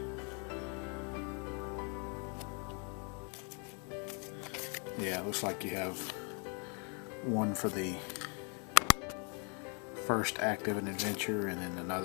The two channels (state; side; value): quieter; right; 37.8 dB